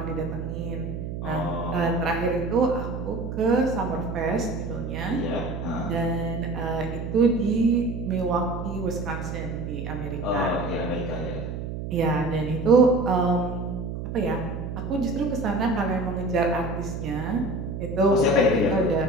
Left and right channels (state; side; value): noise; right; hum, 6 dB below the sound